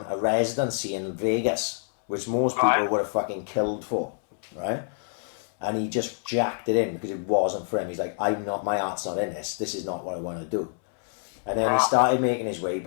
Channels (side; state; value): right; silent; 60 dB below the other